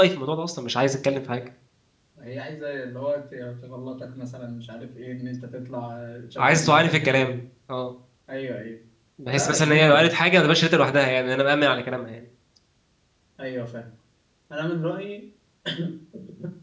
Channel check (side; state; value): both; identical; correlation 1.00